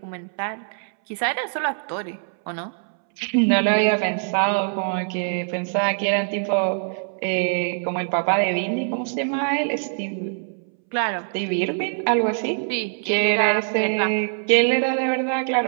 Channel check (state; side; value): silent; left; 63 dB below the other